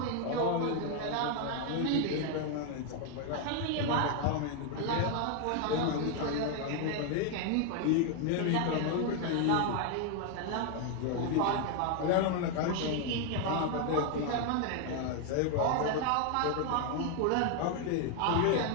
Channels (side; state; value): both; different; correlation 0.01